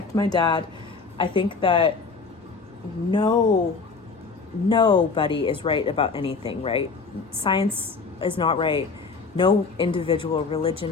my dad, I think that nobody is right about anything, right? Science is not right. No individual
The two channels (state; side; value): quieter; right; 4.6 dB